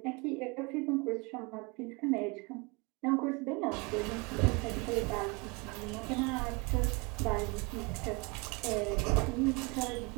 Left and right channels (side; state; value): left; quieter; 28.5 dB